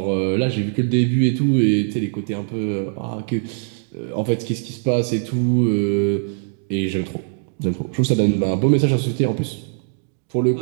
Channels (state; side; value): silent; left; digital silence